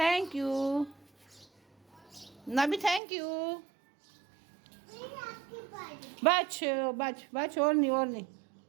you Nabi, thank you. बच और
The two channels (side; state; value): left; drops out; at 3.0 s